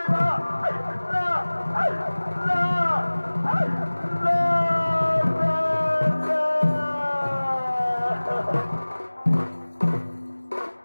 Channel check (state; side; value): inverted; both; correlation -1.00